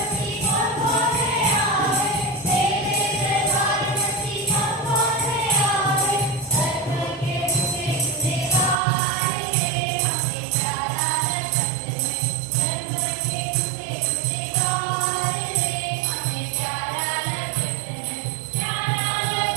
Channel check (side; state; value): left; drops out; at 8.8 s